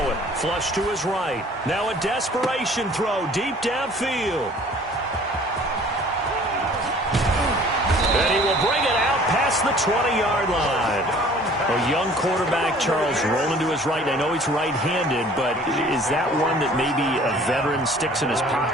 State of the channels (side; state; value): both; normal; correlation 0.51